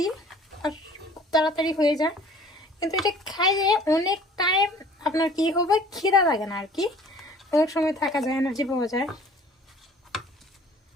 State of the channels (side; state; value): both; normal; correlation 0.51